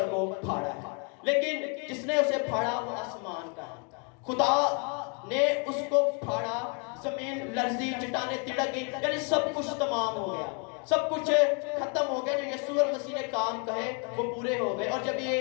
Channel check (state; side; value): quieter; right; 36.7 dB